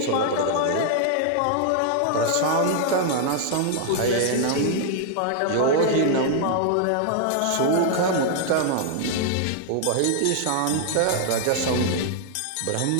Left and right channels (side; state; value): both; different; correlation 0.00